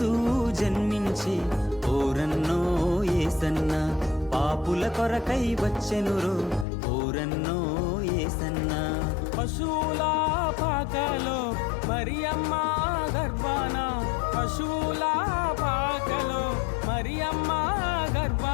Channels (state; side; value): drops out; right; at 6.7 s